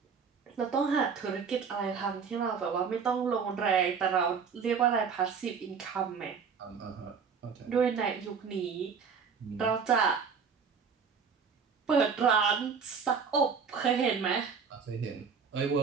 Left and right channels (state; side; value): quieter; left; 6.0 dB